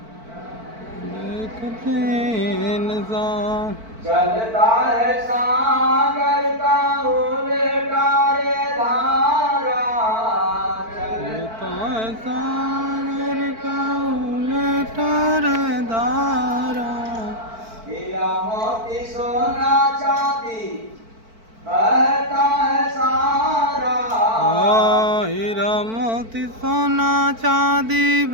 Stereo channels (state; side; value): late; left; 4.5 ms